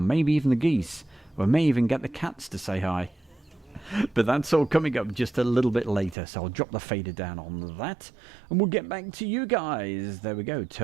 Maybe even the geese. We may even get the cats to say hi. But that's all coming up just a little bit later, so I'll drop the fader down on that, and we'll get back to you guys. There we go,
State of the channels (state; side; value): drops out; left; at 6.2 s